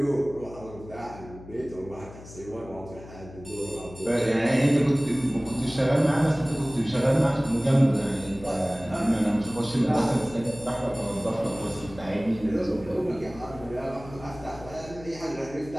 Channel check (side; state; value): left; noise; hum, 17 dB below the sound